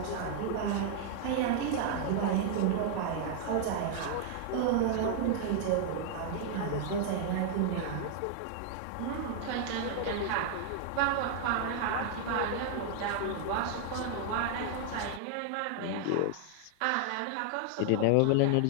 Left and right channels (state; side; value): different; both; correlation -0.01